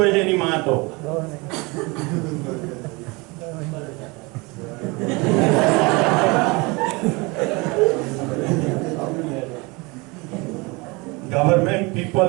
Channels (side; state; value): left; quieter; 26.3 dB